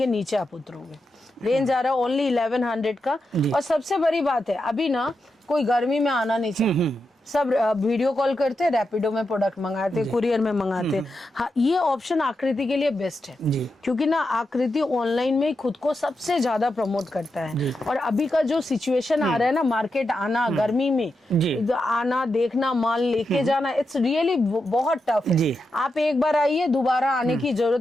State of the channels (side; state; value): both; normal; correlation 0.87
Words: नीचे आप उतरोगे। रेंज आ रहा है ओनली 1100 का। और सबसे बड़ी बात है, अभी ना कोई गर्मी में आना नहीं चाहिए, सब वीडियो कॉल करते, रैपिडो में प्रोडक्ट मंगाते, कुरियर में मंगाते। हाँ, ये ऑप्शन आकृति के लिए बेस्ट है, जी। क्योंकि ना आकृति ऑनलाइन में खुद को सबसे ज्यादा प्रमोट करता है। और अभी का जो सिचुएशन आ रहा है ना, मार्केट आना गर्मी में, जी। आना, देखना, माल लेके जाना, इट्स रियली बहुत टफ है। जी। आप एक बार आइए, दोबारा आने की जरूरत